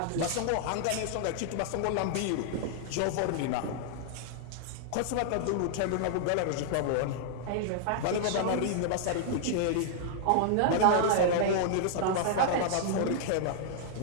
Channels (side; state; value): both; different; correlation -0.01